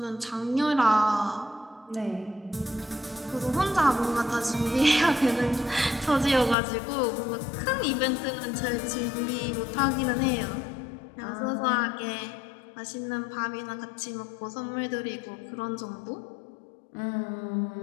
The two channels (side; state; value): right; drops out; at 6.6 s